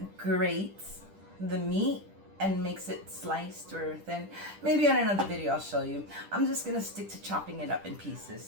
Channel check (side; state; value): left; late; 10 ms